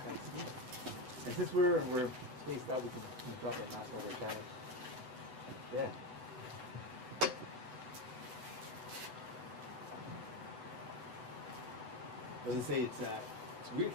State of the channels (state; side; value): late; left; 8.0 ms